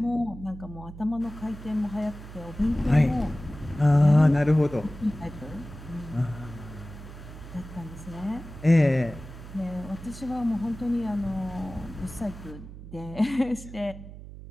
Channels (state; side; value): noise; right; hum, 14 dB below the sound